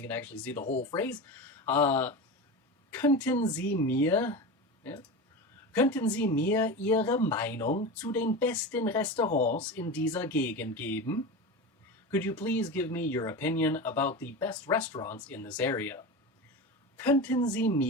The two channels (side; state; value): both; normal; correlation 0.25